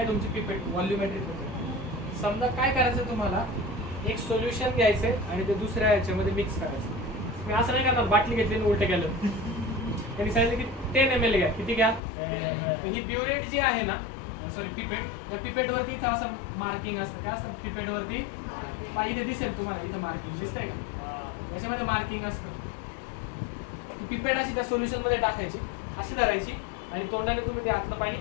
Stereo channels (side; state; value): right; drops out; at 12.0 s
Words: तुमची पिपेट व्हॉल्युमेट्रिक. समजा काय करायचं तुम्हाला, एक सोल्युशन घ्यायचंय आणि ते दुसऱ्या याच्यामध्ये मिक्स करायचं. मी असं नाही करणार बाटली घेतली आणि उलट केलं. त्यांनी सांगितलं की 10 ml घ्या. किती घ्या? ही ब्युरेट जी आहे ना, सॉरी पिपेट, त्या पिपेट वरती इथं असं मार्किंग असतं. काय असतं पिपेट वरती? इथे दिसेल तुम्हाला, इथं मार्किंग दिसतंय का? याच्यामध्ये मार्किंग असतं. पिपेट अशी त्या सोल्युशन मध्ये टाकायची, अशी धरायची आणि तोंडाने तुम्ही ते आतलं पाणी